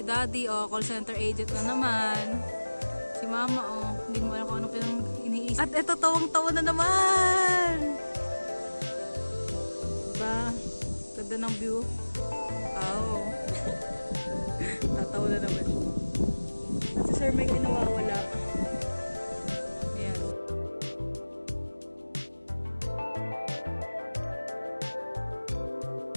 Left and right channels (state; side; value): inverted; both; correlation -1.00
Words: Daddy, call center agent na naman. Si Mama, hindi mo alam kung ano pinang iniisip. At ito, tawang-tawa na naman! Diba? Ganda ng view. Oh. Tatawa na naman. At si Sir Mike ay nawawala. Ayan.